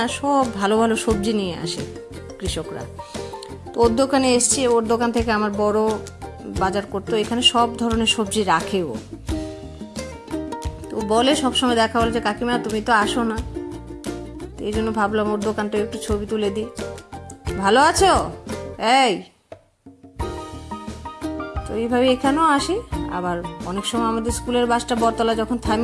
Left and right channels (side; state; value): both; identical; correlation 1.00